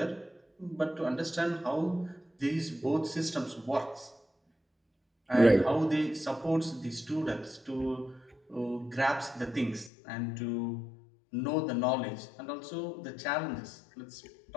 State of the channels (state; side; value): drops out; right; at 9.9 s